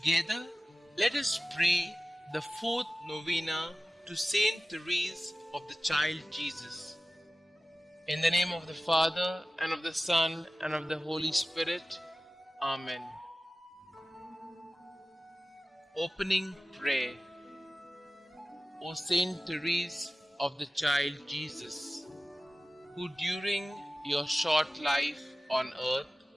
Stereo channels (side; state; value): both; normal; correlation 0.95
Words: let us pray the fourth novena to Saint Therese of the Child Jesus. In the name of the Father, and of the Son, and of the Holy Spirit. Amen. Opening Prayer. O Saint Therese of the Child Jesus, who during your short life on earth